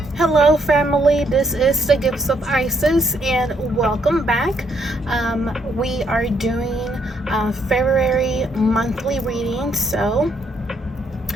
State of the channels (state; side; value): normal; both; correlation 0.72